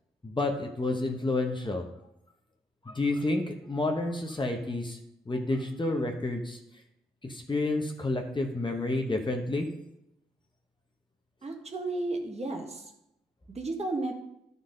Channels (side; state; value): both; normal; correlation 0.77